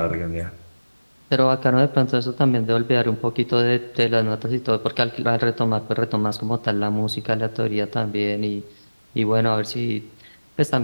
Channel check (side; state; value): both; inverted; correlation -1.00